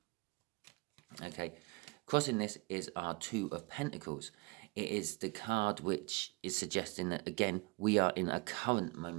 Okay, crossing this is our Two of Pentacles. It is the card which is suggesting that, again, we are in a current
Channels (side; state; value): left; quieter; 27.3 dB